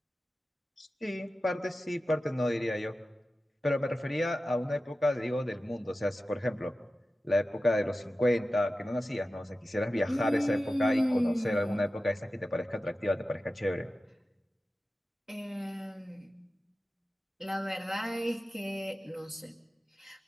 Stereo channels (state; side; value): normal; both; correlation 0.94